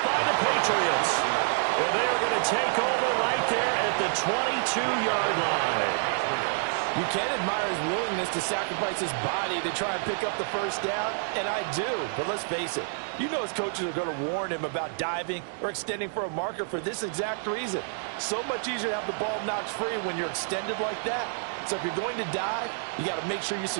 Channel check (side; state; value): left; silent; digital silence